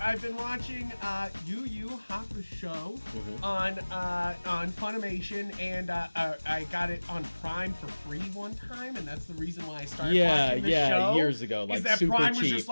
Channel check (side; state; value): both; inverted; correlation -1.00